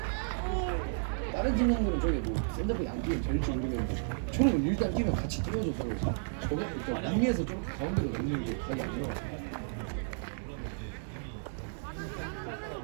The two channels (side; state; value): left; silent; digital silence